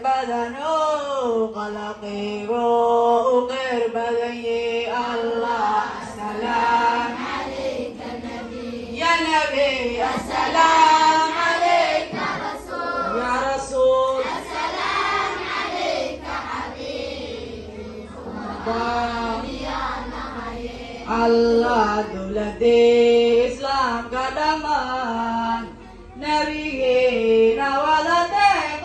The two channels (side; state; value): both; identical; correlation 1.00